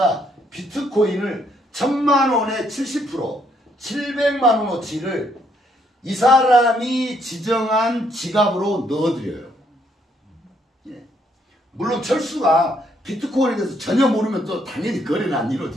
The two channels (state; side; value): normal; both; correlation 0.71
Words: 비트코인을 1000만 원에 70%, 700만 원어치를 이 사람이 지정한 지갑으로 넣어드려요. 예. 물론 철수가 비트코인에 대해서 전혀 모르면 또 당연히 거래는 안